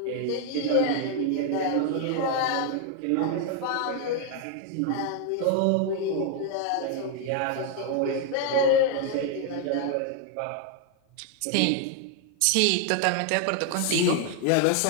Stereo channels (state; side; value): different; both; correlation 0.00